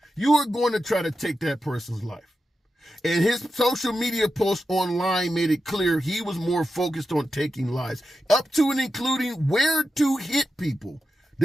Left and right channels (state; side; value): normal; both; correlation 0.90